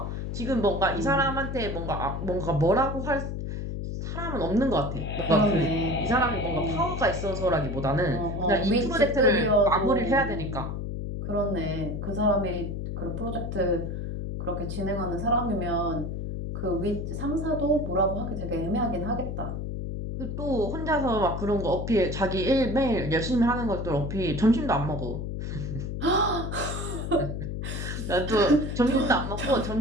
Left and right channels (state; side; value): noise; left; hum, 4 dB below the sound